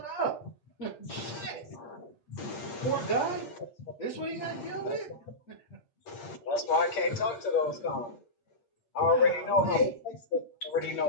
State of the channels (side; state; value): right; late; 8.6 ms